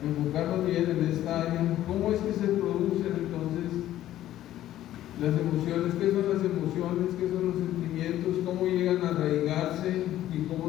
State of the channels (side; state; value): right; quieter; 13.2 dB